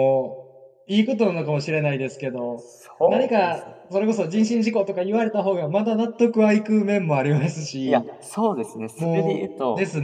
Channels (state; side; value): identical; both; correlation 1.00